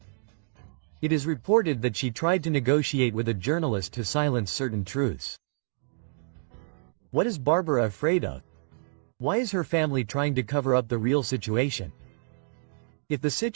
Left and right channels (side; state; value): left; silent; digital silence